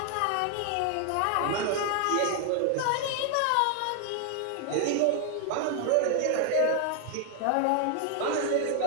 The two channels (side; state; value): both; different; correlation 0.00